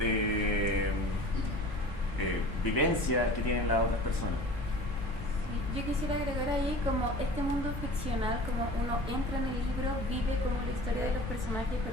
vivencias que tienen las otras personas. Yo quisiera agregar ahí como este mundo ficcional, como uno entra en el libro, vive como la historia de los personajes,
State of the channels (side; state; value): both; normal; correlation 0.40